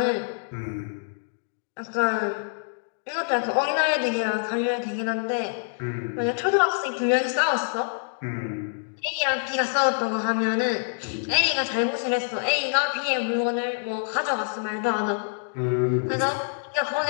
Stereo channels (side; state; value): right; silent; digital silence